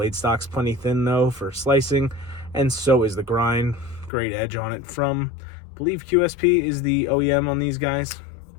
stock's plenty thin though for slicing, and so is the grind. Great edge on it from, I believe QSP is the OEM on these guys.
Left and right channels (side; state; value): right; drops out; at 4.1 s